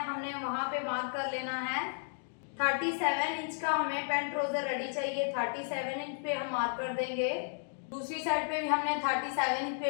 वहां पे मार्क कर लेना है। 37 इंच का हमें पैंट ट्राउजर रेडी चाहिए। 37 इंच पे हम मार्क कर देंगे। दूसरी साइड पे भी हमने 37 इंच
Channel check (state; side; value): silent; right; digital silence